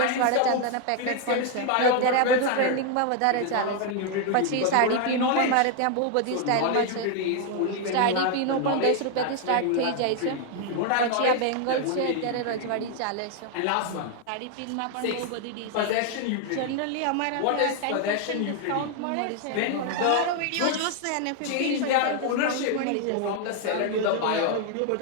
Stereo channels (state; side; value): different; both; correlation 0.00